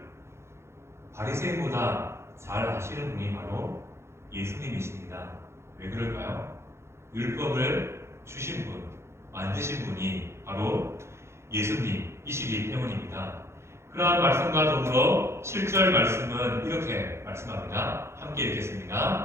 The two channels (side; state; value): left; late; 0.13 ms